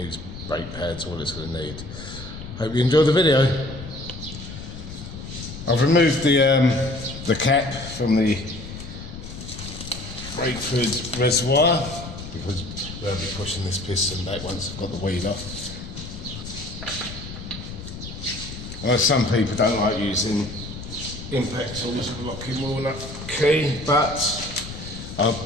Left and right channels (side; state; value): left; noise; rumble, 11 dB below the sound